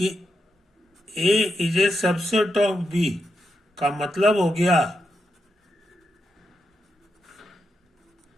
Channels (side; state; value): both; normal; correlation 0.84